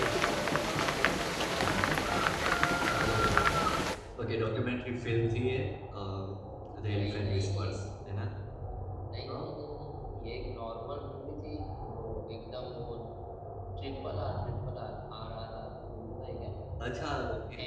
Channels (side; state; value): both; identical; correlation 1.00